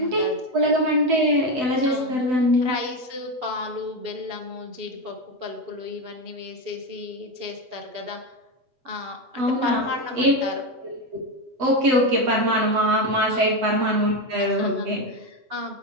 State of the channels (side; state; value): left; late; 7.9 ms